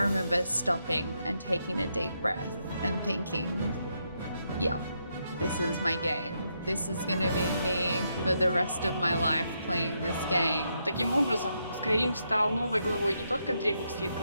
remember stopping and taking a deep breath and thinking, yeah, this is my game. This is gonna be me for the rest of my life playing this game. Таким образом, Skyrim стал новой главой не только древних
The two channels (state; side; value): inverted; both; correlation -0.80